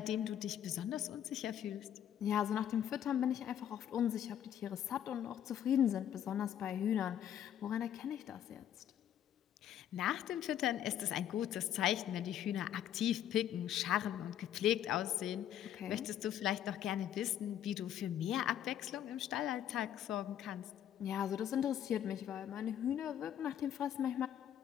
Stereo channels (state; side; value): quieter; right; 10.4 dB